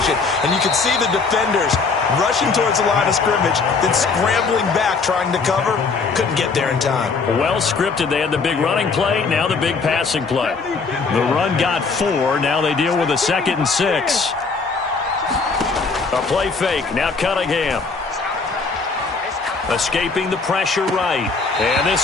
And you can see the defenders rushing towards the line of scrimmage, then scrambling back, trying to cover. Couldn't get there in time. Well scripted. They had the big running play, now the big passing play. The run got 4. Now they deal with a 2nd and 6. A play fake. Now Cunningham. Escaping the pressure right. And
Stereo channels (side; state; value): right; quieter; 4.6 dB